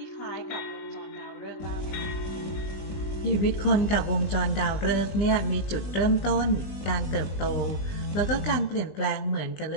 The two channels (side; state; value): right; late; 20 ms